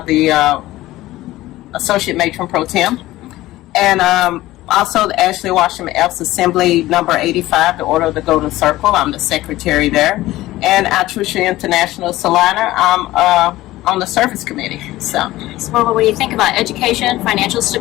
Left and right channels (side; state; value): right; quieter; 16.8 dB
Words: Associate Matron Pro Tem. And also the Ashley Washington Elks Assembly number 85, the Order of the Golden Circle. I'm the secretary there. And at Trucia International Salina, I'm on the service committee. So well, when you think about education, financial